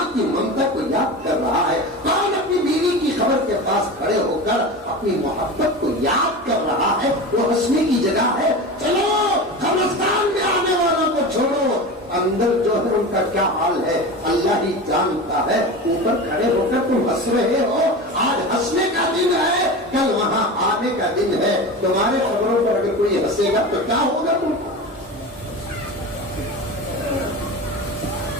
کی ممتا کو یاد کر رہا ہے، کون اپنی بیوی کی خبر کے پاس کھڑے ہو کر اپنی محبت کو یاد کر رہا ہے. وہ ہنسنے کی جگہ ہے. چلو قبرستان میں آنے والوں کو چھوڑو، اندر جو ہے ان کا کیا حال ہے اللہ ہی جانتا ہے. اوپر کھڑے ہو کر تم ہنس رہے ہو، آج ہنسنے کا دن ہے، کل وہاں آنے کا دن ہے. تمہارے خبروں پر اگر کوئی ہنسے گا تو کیا ہوگا تم کو؟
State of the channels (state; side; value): normal; both; correlation 0.28